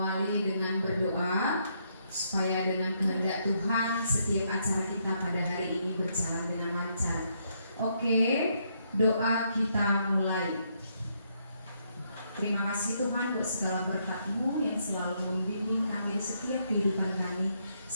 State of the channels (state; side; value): inverted; both; correlation -0.75